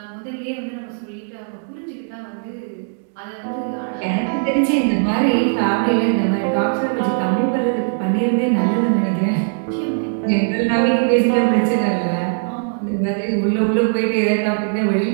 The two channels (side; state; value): left; silent; digital silence